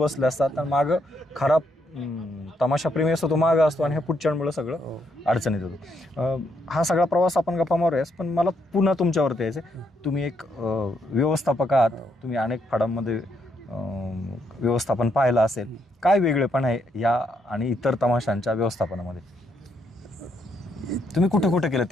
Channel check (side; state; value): both; normal; correlation 0.76